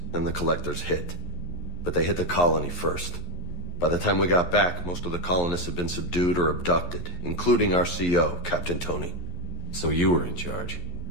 and the collectors hit. But they hit the colony first. By the time we got back, most of the colonists had been subdued or abducted, including our CO, Captain Tony. So you were in charge?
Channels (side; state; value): right; late; 11 ms